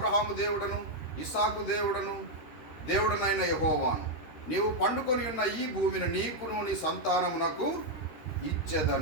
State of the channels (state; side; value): late; right; 13 ms